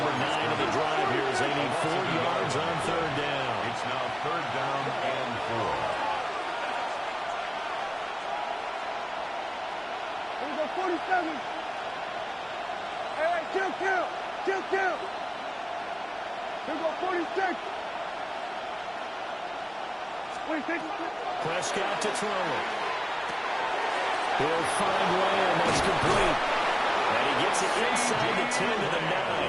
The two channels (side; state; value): both; identical; correlation 1.00